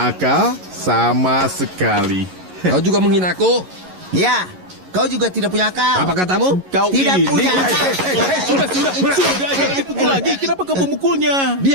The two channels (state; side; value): late; left; 11 ms